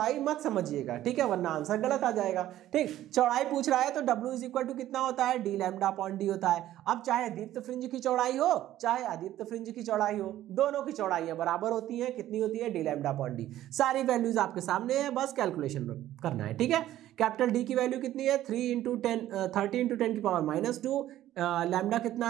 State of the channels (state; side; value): quieter; left; 13.5 dB